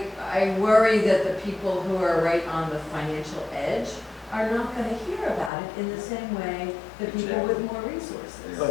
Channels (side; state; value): right; drops out; at 5.5 s